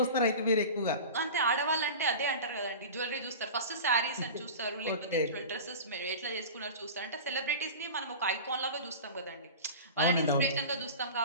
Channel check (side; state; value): both; inverted; correlation -0.33